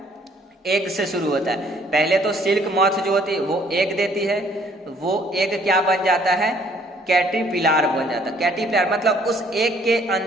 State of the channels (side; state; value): both; normal; correlation 0.61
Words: एग से शुरू होता है। पहले तो सिल्क मॉथ जो होती है वो एग देती है, वो एग क्या बन जाता है, कैटरपिलर बन जाता है। कैटरपिलर मतलब उस एग के